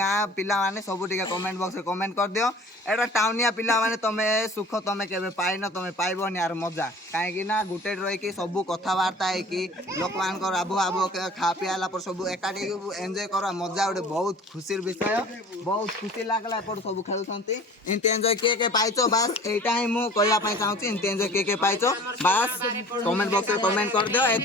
पिला माने सब टिके कमेंट बॉक्स रे कमेंट कर दियो एटा टाउनिया पिला माने तमे सुख तमे केबे पाइनो तमे पाइबोनी यार मजा काहे कि ना गुटे रही कि सब कथा वार्ता है कि लोक मान कर आबो आबो खा पियाला पर सब एकाडी एन्जॉय करा मजा उडे बहुत खुशीर विषय बहुत खुशी लागला पर सब खेलुछंती इनते एन्जॉय के पाइछो बस एटा ही मु कहया पई चाहूची इनते एन्जॉय के पाइछो बस कमेंट बॉक्स रे कमेंट कर दियो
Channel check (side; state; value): both; normal; correlation 0.45